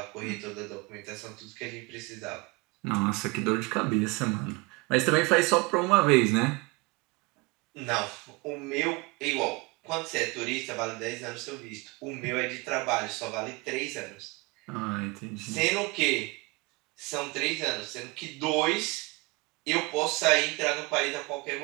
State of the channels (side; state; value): left; quieter; 26.1 dB